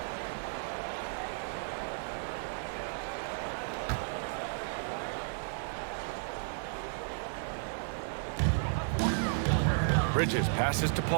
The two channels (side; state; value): left; silent; digital silence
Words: Bridges passes to